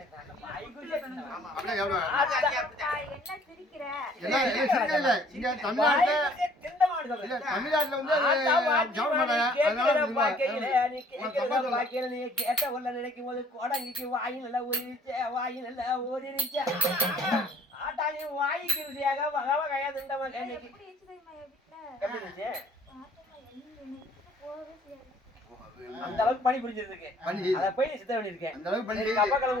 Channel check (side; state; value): both; normal; correlation 0.57